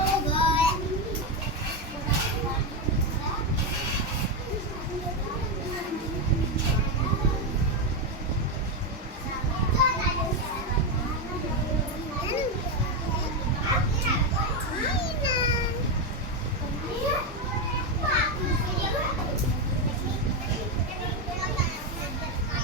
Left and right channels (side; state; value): both; normal; correlation 0.08